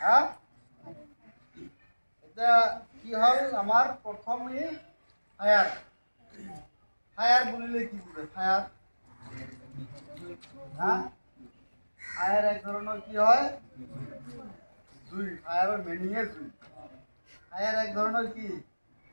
এটা কি হল আমার প্রথমে ফায়ার। ফায়ার বলিলে কি বুঝে? ফায়ার, হ্যাঁ, ফায়ার এক ধরনের কি হয়? জুই। ফায়ারের মিনিংয়ে জুই। ফায়ার এক ধরনের কি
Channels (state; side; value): inverted; both; correlation -1.00